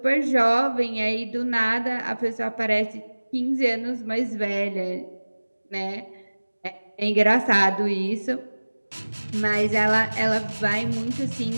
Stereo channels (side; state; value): both; inverted; correlation -1.00